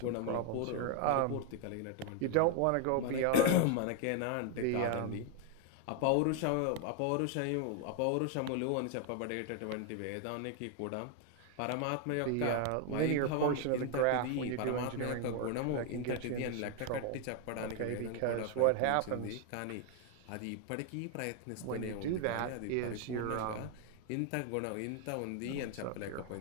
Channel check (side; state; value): both; different; correlation 0.01